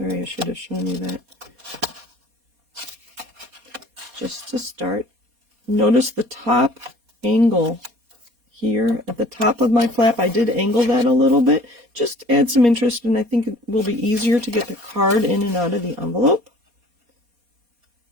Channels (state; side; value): late; left; 4.2 ms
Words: I should have shown you that. Just to start, notice the top angle here at the top of my flap. I did angle that a little bit, just to add some interest, and I think it will be easier to get the card in and out of the envelope.